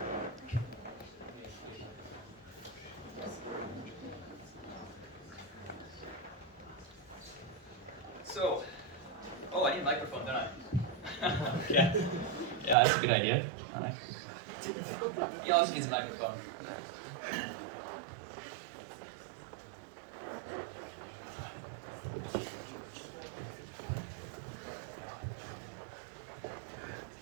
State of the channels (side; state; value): left; drops out; at 12.8 s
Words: So, oh, I need a microphone, don't I? Yeah, that's a good idea. All right. He also needs a microphone.